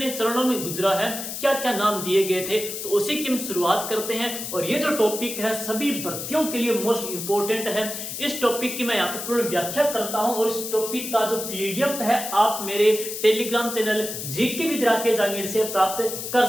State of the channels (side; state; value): left; noise; hiss, 6 dB below the sound